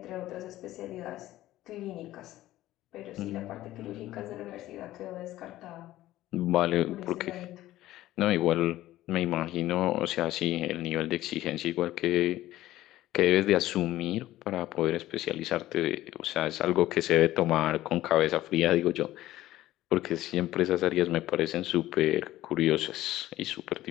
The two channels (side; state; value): right; quieter; 15.2 dB